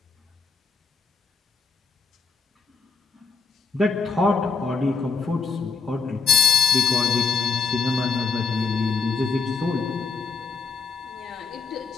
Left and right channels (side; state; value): right; quieter; 4.7 dB